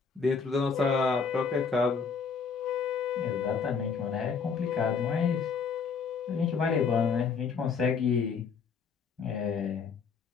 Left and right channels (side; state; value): right; quieter; 5.7 dB